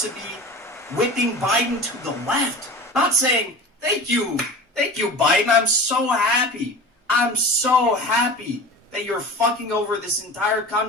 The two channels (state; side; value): normal; both; correlation 0.35